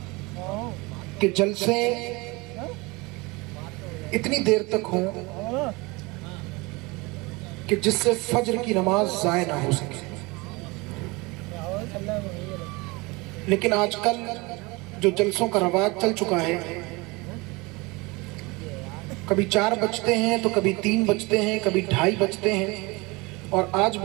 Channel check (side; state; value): left; quieter; 24.8 dB